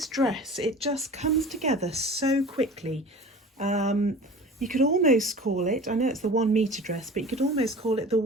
dress. It just comes together so quickly. You could almost call it, I know it's the 1 metre dress, but you could almost call it the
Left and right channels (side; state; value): both; normal; correlation 0.39